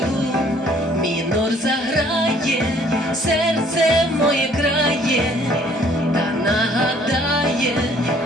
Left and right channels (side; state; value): both; normal; correlation 0.59